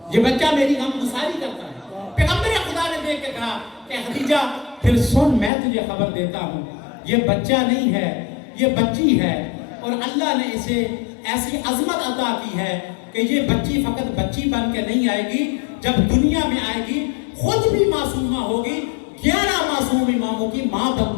یہ بچہ میری غم گساری کرتا ہے. پیغمبر خدا نے دیکھ کے کہا کہ خدیجہ پھر سن میں تجھے خبر دیتا ہوں، یہ بچہ نہیں ہے یہ بچی ہے، اور اللہ نے اسے ایسی عظمت عطا کی ہے کہ یہ بچی فقط بچی بن کے نہیں آئے گی، جب دنیا میں آئے گی خود بھی معصومہ ہوگی، 11 معصوم اماموں کی ماں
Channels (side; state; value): right; drops out; at 5.5 s